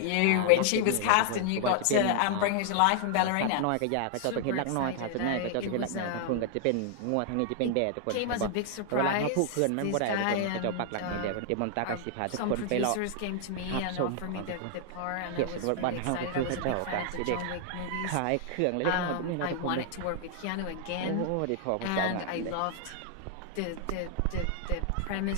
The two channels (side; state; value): both; different; correlation 0.00